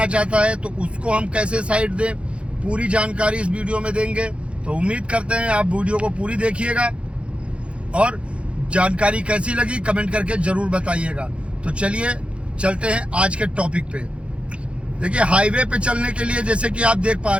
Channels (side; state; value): left; late; 0.059 ms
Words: चाहता है तो उसको हम कैसे साइड दें, पूरी जानकारी इस वीडियो में देंगे। तो उम्मीद करते हैं आप वीडियो को पूरी देखिएगा और जानकारी कैसी लगी कमेंट करके जरूर बताइएगा। तो चलिए चलते हैं आज के टॉपिक पे। देखिए, हाईवे पे चलने के लिए जैसे कि आप देख पा